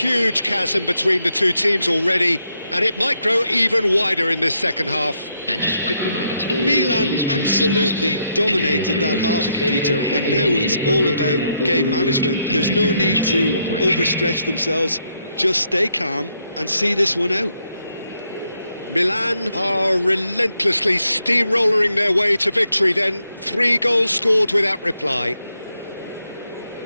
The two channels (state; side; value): inverted; both; correlation -0.78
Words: chasm between the two teams already, and it might grow even wider in this second half. And just a quick reminder today. Milan absolutely dominated that half, Peter, and now it's all about game management. There's no need to overstretch themselves. Just stay calm and see this one out. Milan are relentlessly steamrolling their way to victory then. 3 goals scored without reply.